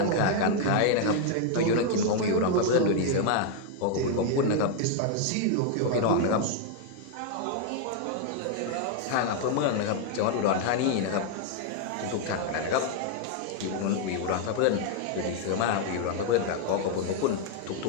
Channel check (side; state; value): both; different; correlation 0.00